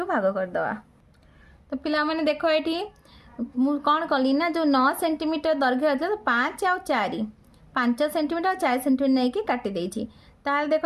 भाग कर दवा। तो पिला माने देखो ये कौन कली ना जो 9 सेंटीमीटर दैर्घ्य अच्छे तो 5 और 4 5 सेंटीमीटर 4 सेंटीमीटर नहीं कि काटी देछि। ताल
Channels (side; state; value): both; identical; correlation 1.00